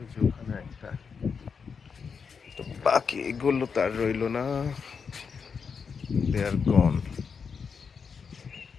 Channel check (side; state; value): right; quieter; 5.9 dB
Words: যে ওখানে একটা, তো বাকি এগুলো তার রইলো না, দে আর গন।